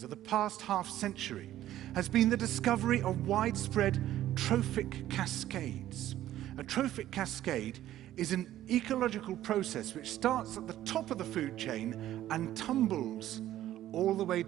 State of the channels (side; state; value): left; quieter; 13.2 dB